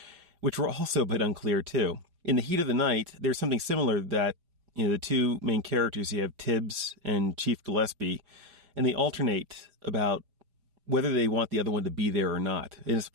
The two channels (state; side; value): late; left; 5.1 ms